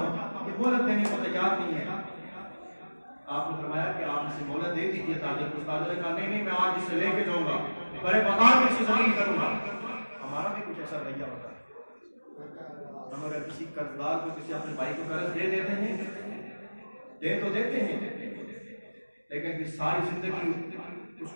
یہ مہلت دینے کو تیار نہیں ہے۔ آپ نے فرمایا کہ آپ اسے مہلت دے دیجیے تاجر کو۔ تاجر نے کہا نہیں میں آج اسے لے کے جاؤں گا، بڑے مقام میں اسے ذلیل کروں گا۔ ہمارا بھی کچھ ایسا رویہ ہوتا ہے، ہم اگر کسی قرضدار کو کسی اپنے بھائی کو قرض دے دیتے ہیں، دے تو دیتے ہیں، لیکن پھر ساری زندگی اس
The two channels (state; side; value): inverted; both; correlation -1.00